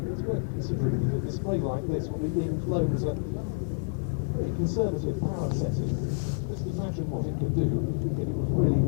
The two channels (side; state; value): right; silent; digital silence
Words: it's worth considering that a display like this will be being flown as a very conservative power setting. Just imagine what it could do if it was really